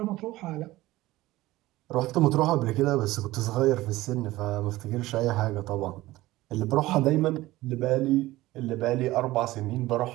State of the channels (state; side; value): quieter; left; 17.6 dB